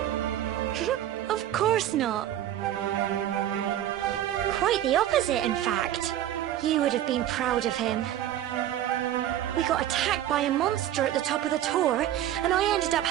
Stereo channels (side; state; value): left; quieter; 12.1 dB